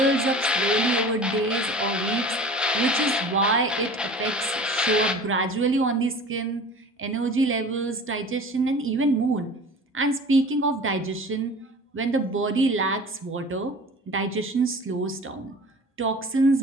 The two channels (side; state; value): both; normal; correlation 0.41